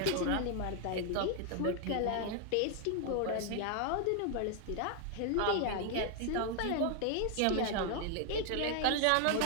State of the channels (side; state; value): both; different; correlation 0.00